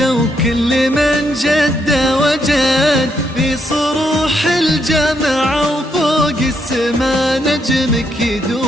وكل من جد وجد في صروح الجامعة وفوق السما نجمك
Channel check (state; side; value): normal; both; correlation 0.77